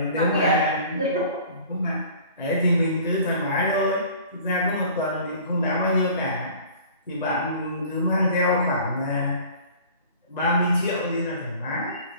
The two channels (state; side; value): inverted; both; correlation -0.46